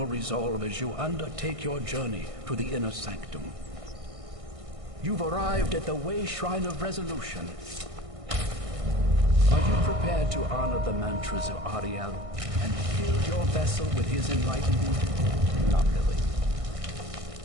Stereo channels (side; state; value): left; late; 1.6 ms